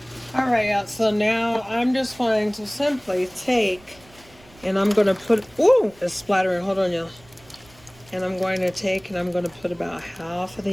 All right, yeah, so now I'm just going to simply take, and I'm going to put, ooh, it's splattering, hold on, y'all. And I'm going to take and I'm going to put about half of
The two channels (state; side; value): noise; right; rumble, 26 dB below the sound